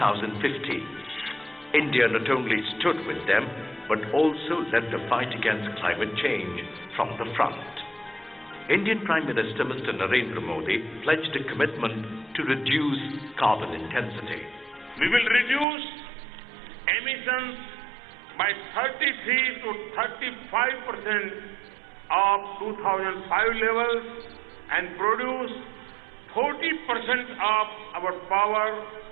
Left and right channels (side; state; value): left; drops out; at 15.7 s